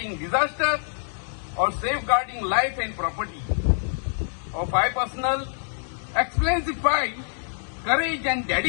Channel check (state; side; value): silent; right; digital silence